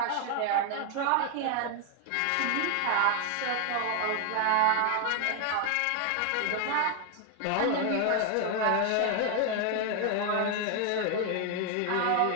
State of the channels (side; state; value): both; different; correlation 0.00